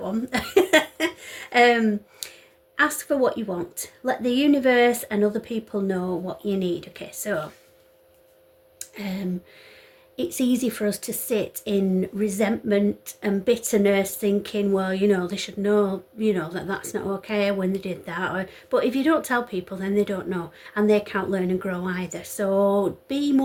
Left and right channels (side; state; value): both; identical; correlation 1.00